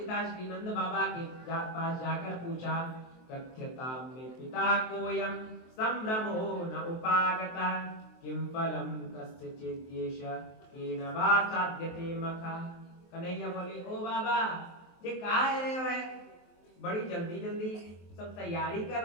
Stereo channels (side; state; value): right; late; 23 ms